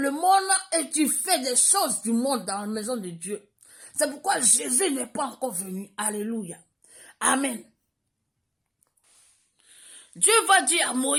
monde et tu fais des choses du monde dans la maison de Dieu. C'est pourquoi Jésus n'est pas encore venu. Alléluia. Amen. Dieu va dire à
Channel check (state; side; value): identical; both; correlation 1.00